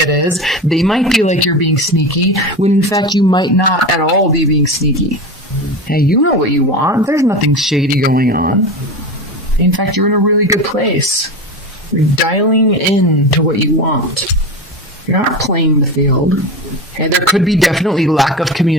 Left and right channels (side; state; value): both; normal; correlation 0.25